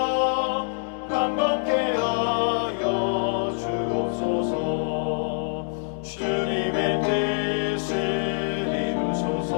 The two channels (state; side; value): silent; right; 60 dB below the other